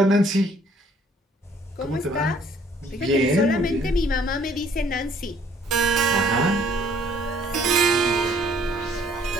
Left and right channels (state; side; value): normal; both; correlation 0.60